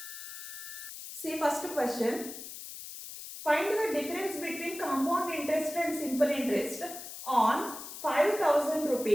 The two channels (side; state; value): left; noise; hiss, 11 dB below the sound